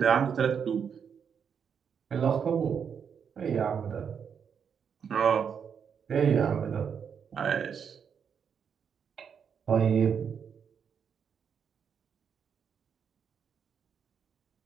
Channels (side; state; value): left; quieter; 7.1 dB